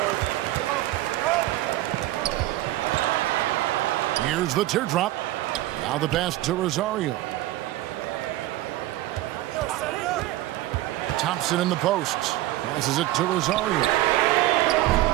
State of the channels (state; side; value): quieter; left; 16.1 dB